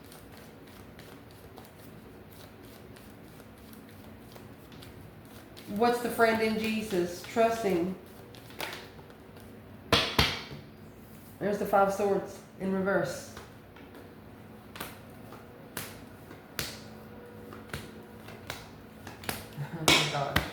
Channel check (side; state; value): both; identical; correlation 1.00